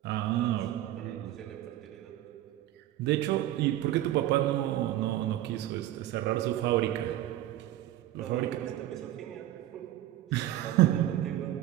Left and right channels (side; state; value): left; quieter; 13.8 dB